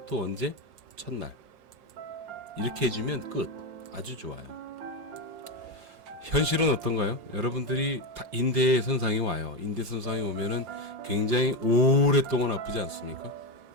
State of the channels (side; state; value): left; late; 5.7 ms